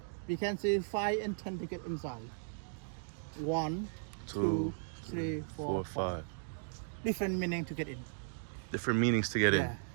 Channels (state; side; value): silent; left; digital silence